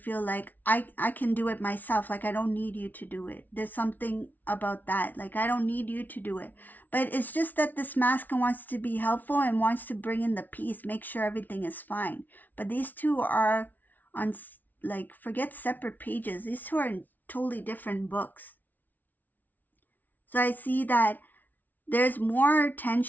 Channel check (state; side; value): late; right; 0.081 ms